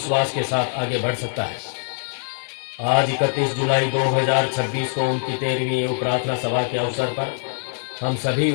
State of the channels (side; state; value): right; silent; 60 dB below the other